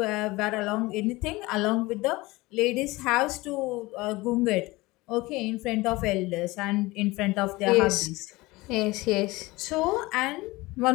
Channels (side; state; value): right; quieter; 21.3 dB